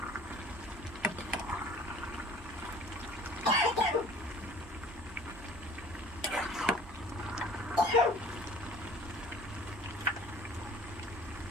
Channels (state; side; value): normal; both; correlation 0.48